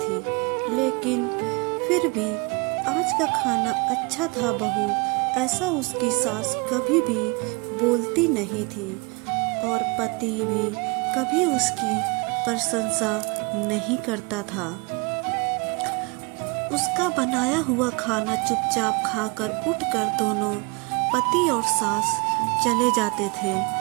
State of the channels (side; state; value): left; quieter; 27.7 dB